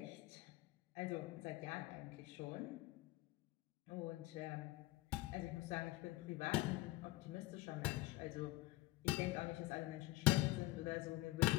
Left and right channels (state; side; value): quieter; right; 18.8 dB